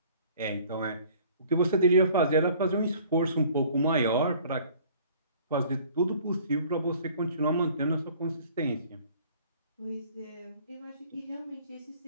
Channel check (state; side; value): inverted; both; correlation -0.53